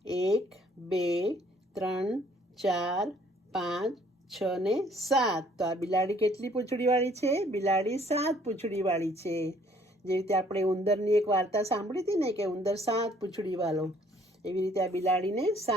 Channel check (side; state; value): both; normal; correlation 0.61